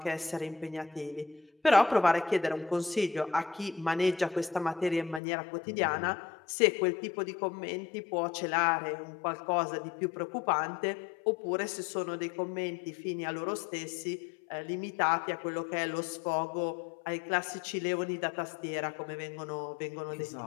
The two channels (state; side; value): drops out; right; at 5.2 s